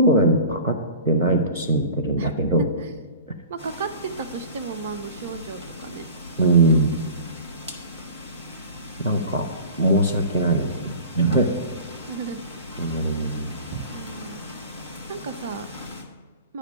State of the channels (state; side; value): inverted; both; correlation -0.39